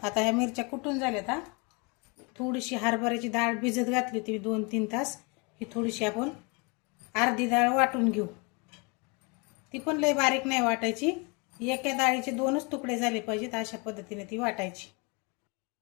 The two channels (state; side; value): quieter; right; 30.7 dB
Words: आता ह्या मिरच्या कुटून झाल्यात। थोडीशी हरभऱ्याची डाळ भिजत घातली होती 2-3 तास। ही थोडीशी आपण अर्धी डाळ वाटून घेऊ। ती पण लय बारीक नाही वाटायची, एका डाळीचे 2च तुकडे झाले पाहिजेत अशा पद्धतीने ती वाटायची।